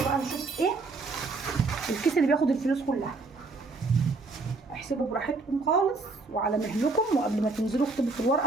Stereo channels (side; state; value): left; quieter; 3.7 dB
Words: بقى نشوف ايه الكيس اللي بياخد الفلوس كلها. احسبوا براحتكم خالص وعلى مهلكم، وقبل ما تنزلوا اكتبوا في